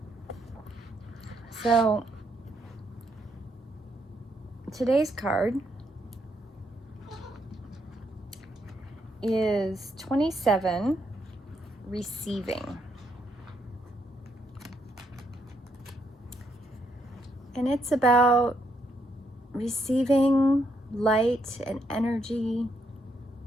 So, today's card is 27, Receiving. And it's about receiving light and energy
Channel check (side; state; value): both; normal; correlation 0.76